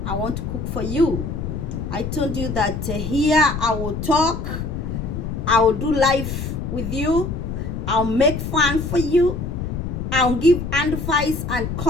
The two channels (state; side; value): noise; left; rumble, 4 dB below the sound